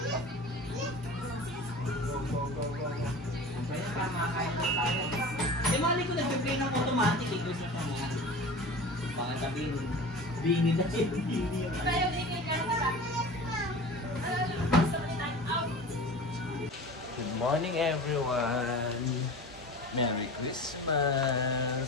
Eh, mali ko nag-play ng automatic eh. Gusto ko na. Baka sabihin, bini na siya. Bini yun. Tayo din kay Carla. Gusto ko ni time out. Good morning, everyone! Merry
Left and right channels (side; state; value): both; normal; correlation 0.36